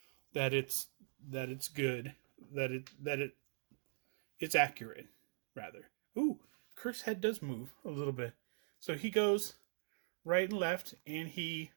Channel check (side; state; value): left; silent; digital silence